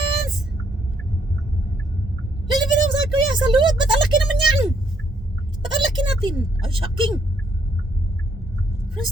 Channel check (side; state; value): both; normal; correlation 0.70